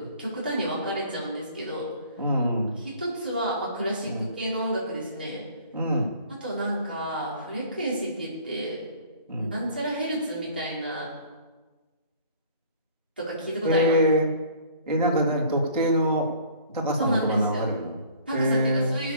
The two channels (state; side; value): inverted; both; correlation -0.52